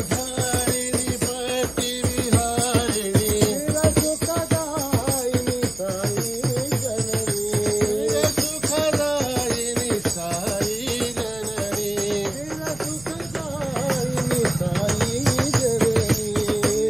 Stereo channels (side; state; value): right; noise; hum, 19 dB below the sound